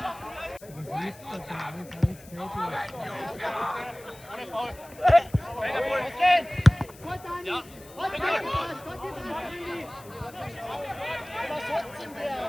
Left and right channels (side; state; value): left; noise; hiss, 21 dB below the sound